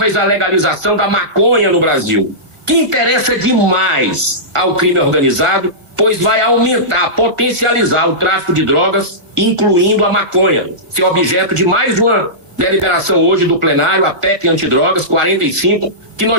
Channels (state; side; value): late; left; 1.5 ms